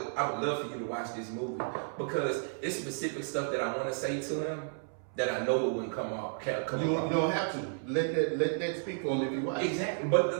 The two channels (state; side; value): silent; left; 56 dB below the other